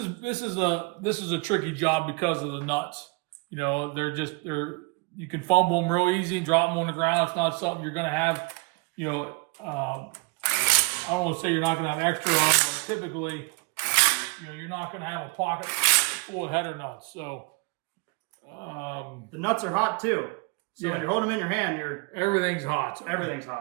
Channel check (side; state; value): left; quieter; 29.5 dB